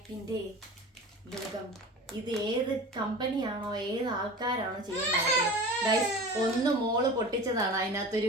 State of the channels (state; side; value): normal; both; correlation 0.36